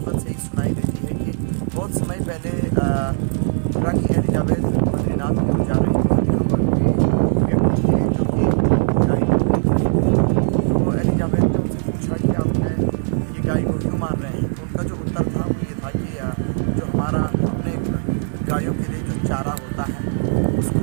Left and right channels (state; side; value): silent; left; 57 dB below the other